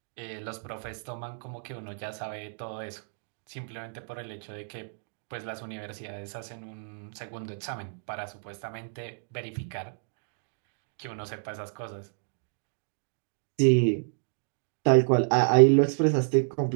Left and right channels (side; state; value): left; silent; digital silence